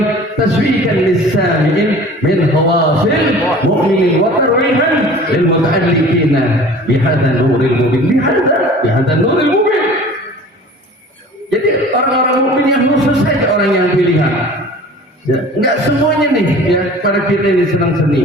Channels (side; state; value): both; normal; correlation 0.44